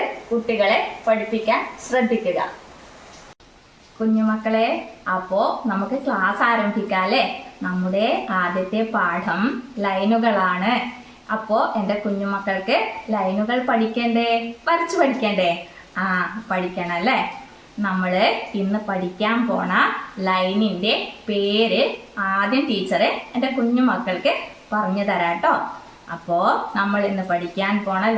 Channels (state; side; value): identical; both; correlation 1.00